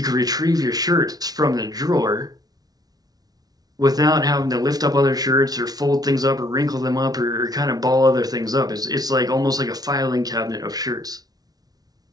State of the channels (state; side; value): late; left; 0.19 ms